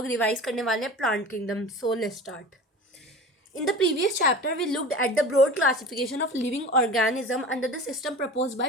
रिवाइज करने वाले हैं plant kingdom. So let's start. In the previous chapter, we looked at the broad classification of living organism under the system proposed by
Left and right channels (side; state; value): both; normal; correlation 0.36